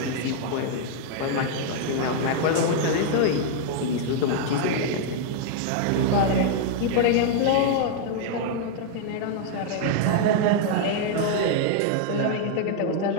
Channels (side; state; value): both; different; correlation 0.00